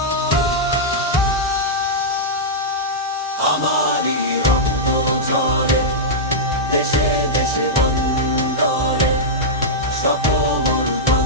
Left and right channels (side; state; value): both; normal; correlation -0.09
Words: আমারই রক্ত ঝরে দেশে দেশে বন্দরে, শত